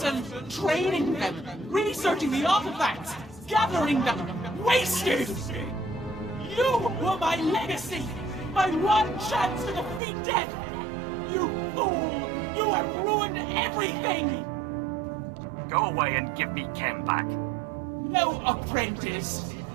training them, researching the artifacts, gathering them, wasted! You were my legacy, my one chance to defeat death! You fool! You have ruined everything! Go away and give me Kem back. No, apprentice.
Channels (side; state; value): left; drops out; at 10.0 s